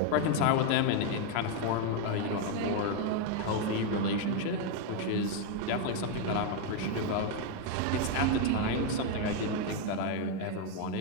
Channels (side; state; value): both; different; correlation 0.01